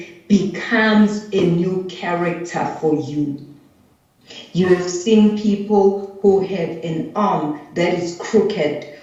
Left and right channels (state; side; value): identical; both; correlation 1.00